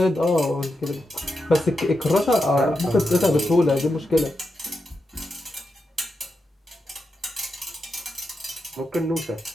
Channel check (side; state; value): both; normal; correlation 0.87